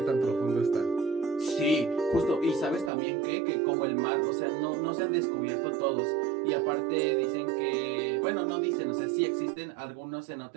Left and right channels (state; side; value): drops out; left; at 2.9 s